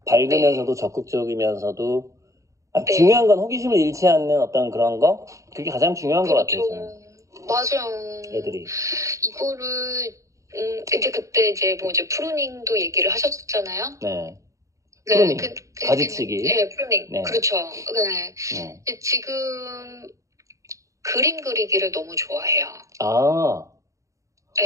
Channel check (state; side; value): late; left; 0.15 ms